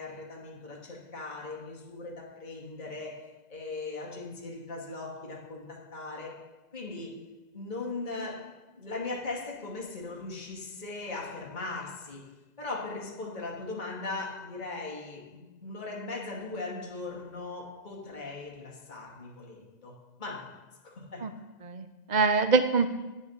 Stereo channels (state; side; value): late; left; 2.0 ms